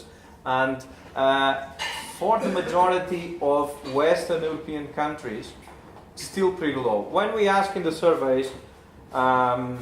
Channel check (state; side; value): identical; both; correlation 1.00